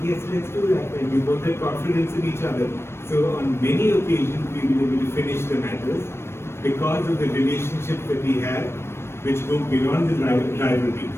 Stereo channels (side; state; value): right; late; 0.12 ms